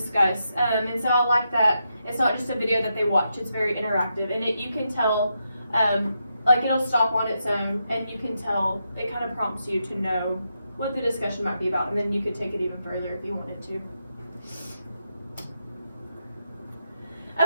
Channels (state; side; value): inverted; both; correlation -0.84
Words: and so I like that it's not just a video that they watch, it's very interactive, and you can tell, like it'll stop on its own, and you can tell, it kind of prompts you to know what the discussion might be about, and then you could take it even further if you wanted to.